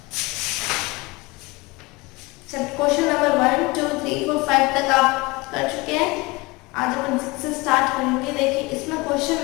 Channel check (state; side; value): quieter; right; 24.0 dB